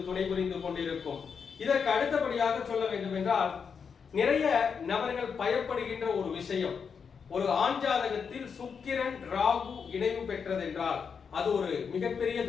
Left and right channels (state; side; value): quieter; right; 6.2 dB